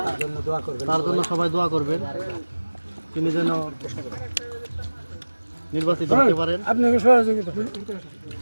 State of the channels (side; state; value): both; inverted; correlation -1.00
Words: তার জন্য সবাই দোয়া করবেন, তিনি যেন নির্বাচিত হতে পারেন। আপনাকে সহযোগিতা